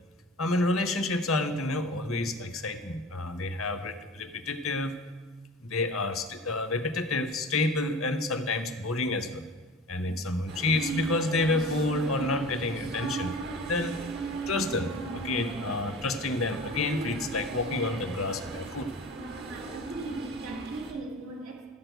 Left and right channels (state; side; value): normal; both; correlation 0.37